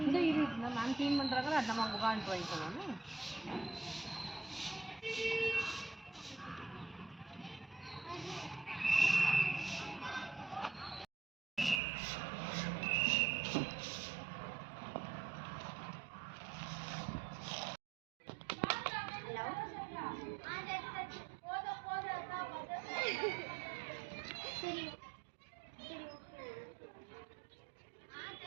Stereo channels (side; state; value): left; drops out; at 11.8 s